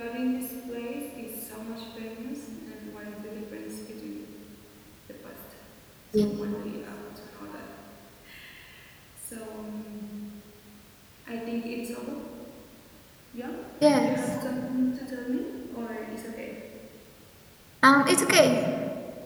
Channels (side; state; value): both; identical; correlation 1.00